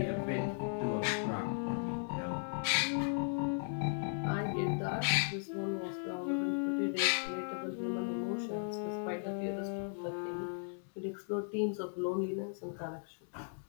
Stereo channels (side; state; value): right; silent; 53 dB below the other